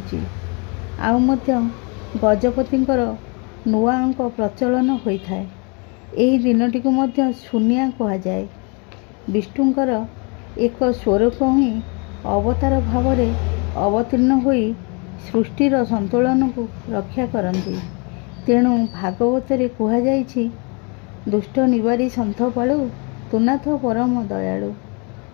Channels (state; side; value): quieter; right; 33.7 dB